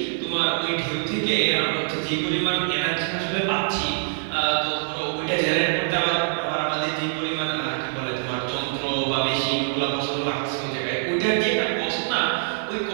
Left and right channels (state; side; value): silent; left; 57 dB below the other